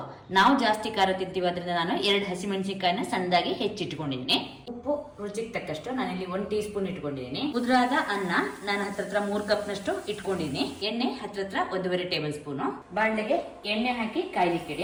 ನಾವು ಜಾಸ್ತಿ ಖಾರ ತಿಂತೀವಿ, ಅದರಿಂದ ನಾನು 2 ಹಸಿಮೆಣಸಿನಕಾಯಿನ ಸಣ್ಣದಾಗಿ ಹೆಚ್ಚಿಟ್ಕೊಂಡಿದ್ದೀನಿ. ಉಪ್ಪು ರುಚಿಗೆ ತಕ್ಕಷ್ಟು ನಾನಿಲ್ಲಿ 1 ಟೀ ಸ್ಪೂನ್ ಇಟ್ಕೊಂಡಿದ್ದೀನಿ. ಉದುರಾದ ಅನ್ನ ನಾನು ಹತ್ರ 3 ಕಪ್ ನಷ್ಟು ಇಟ್ಕೊಂಡಿದ್ದೀನಿ. ಎಣ್ಣೆ ಹತ್ರ 1.5 ಟೇಬಲ್ ಸ್ಪೂನು. ಬಾಣಲೆಗೆ ಎಣ್ಣೆ ಹಾಕಿ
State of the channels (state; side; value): identical; both; correlation 1.00